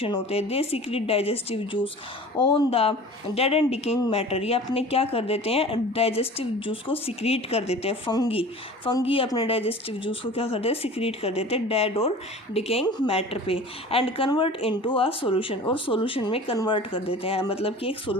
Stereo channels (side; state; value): both; normal; correlation 0.41